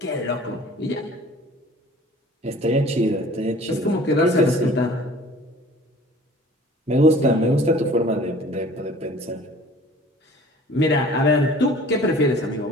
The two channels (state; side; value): normal; both; correlation 0.48